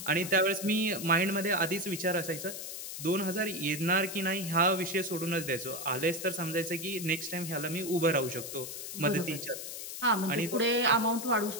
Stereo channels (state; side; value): noise; left; hiss, 8 dB below the sound